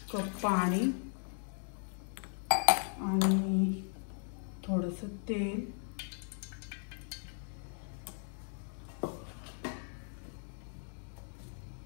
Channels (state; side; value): silent; right; 53 dB below the other